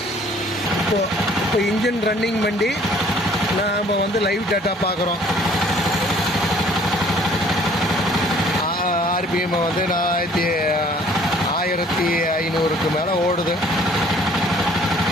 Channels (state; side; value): normal; both; correlation 0.57